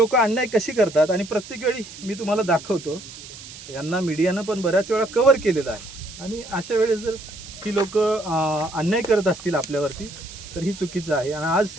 अन्याय कशी करतात आणि प्रत्येक वेळी मी तुम्हाला दाखवतो, यांना मीडियानं पण बऱ्याच वेळा कव्हर केलेलं आहे. आणि अशा वेळेस जर ही लोक अन्याय करत असतील आपल्यावरती तर ही चुकीचं आहे. आणि आज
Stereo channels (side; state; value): right; noise; hiss, 15 dB below the sound